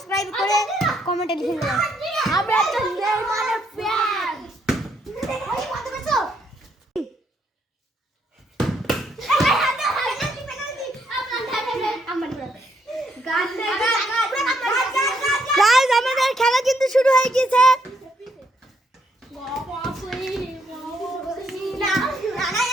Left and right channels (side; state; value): both; normal; correlation 0.73